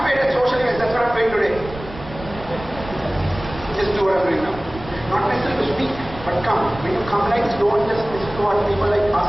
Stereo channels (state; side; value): noise; right; rumble, 14 dB below the sound